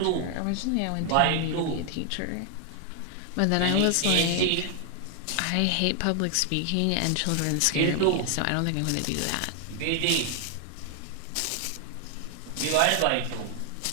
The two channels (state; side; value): different; both; correlation 0.00